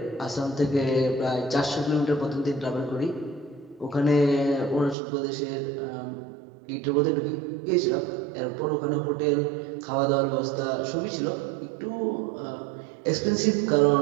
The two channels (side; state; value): left; drops out; at 5.0 s